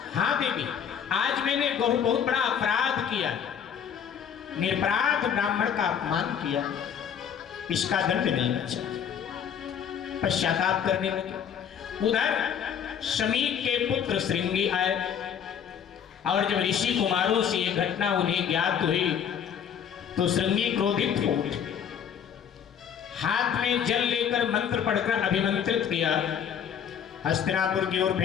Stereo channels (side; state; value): right; quieter; 8.2 dB